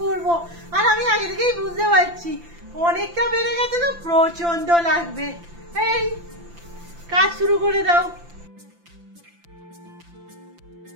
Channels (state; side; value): late; left; 5.9 ms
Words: করবো, আর আমি আগে থেকেই বুঝতে পারছি অনেকটা বেড়ে গেছে, তো প্রচন্ড লাগবে। এই কাজ শুরু করে দাও।